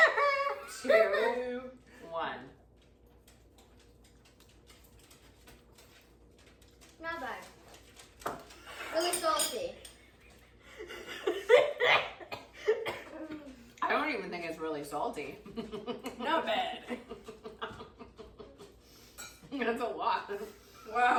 2, 1. Not bad. Really salty. I don't even think it's really salty. Not bad. That's a lot.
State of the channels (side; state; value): both; identical; correlation 1.00